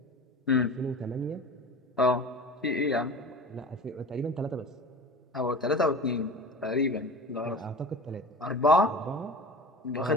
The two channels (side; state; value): both; normal; correlation 0.35